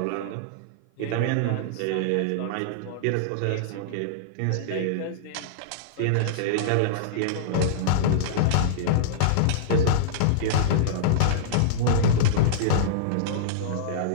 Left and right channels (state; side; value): different; both; correlation -0.03